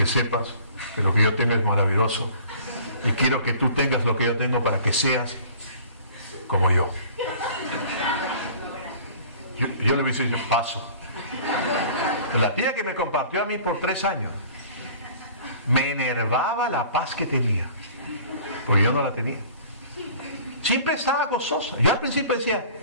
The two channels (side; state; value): both; inverted; correlation -0.48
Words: sepas que lo que yo tengo es maravilloso y quiero que tú tengas lo que yo tengo para que seas como yo. Yo le hubiese dicho, paso. La tía que me compartió a mí por 3 años me enervaba la paz que tenía, porque yo no la tenía. Siempre estaba gozosa. Yo al principio decía,